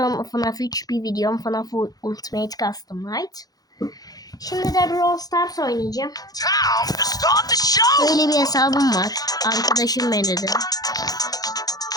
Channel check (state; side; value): late; right; 0.18 ms